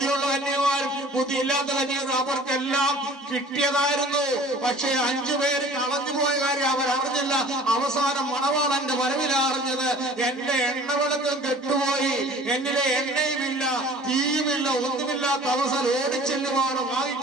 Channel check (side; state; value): both; normal; correlation 0.47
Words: കന്യകമാരും ബുദ്ധിയില്ലാത്ത കന്യകമാരും അവർക്കെല്ലാം കിട്ടിയതായിരുന്നു. പക്ഷേ 5 പേര് കളഞ്ഞുപോയ കാര്യം അവരറിഞ്ഞില്ല. അവസാനം മണവാളന്റെ വരവില അറിഞ്ഞത്. എന്റെ എണ്ണവിളക്കം കെട്ടുപോയി, എന്നിലെ എണ്ണയുമില്ല, തീയുമില്ല, ഒന്നുമില്ലാത്ത അവസരം ഓടിച്ചെല്ലുവാണ്